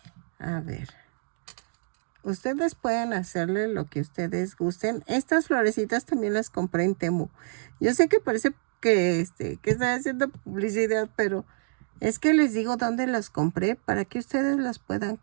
A ver. Ustedes pueden hacerle lo que ustedes gusten. Estas florecitas también las compré en Temu. Yo sé que parece que estoy haciendo publicidad, pero es que les digo dónde las compré para que ustedes las puedan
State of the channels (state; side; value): silent; left; digital silence